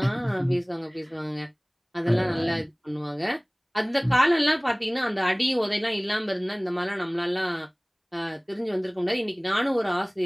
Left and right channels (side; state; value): both; identical; correlation 1.00